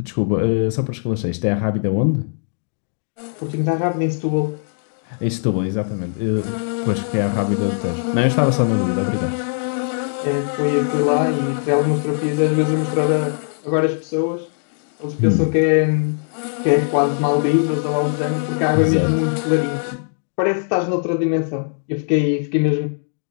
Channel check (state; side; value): silent; right; digital silence